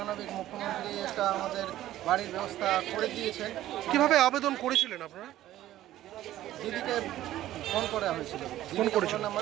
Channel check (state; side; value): quieter; left; 13.9 dB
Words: মুখ্যমন্ত্রী একটা আমাদের বাড়ির ব্যবস্থা করে দিয়েছেন। কিভাবে আবেদন করেছিলেন আপনারা? দিদিকে ফোন করা হয়েছিল,